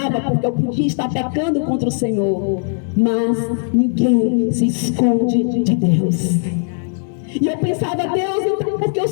porque eu podia estar pecando contra o Senhor. Mas ninguém se esconde de Deus. E eu pensava, Deus, então porque o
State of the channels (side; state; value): right; silent; digital silence